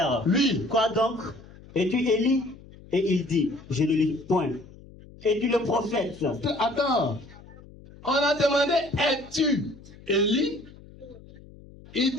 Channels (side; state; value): left; noise; hum, 21 dB below the sound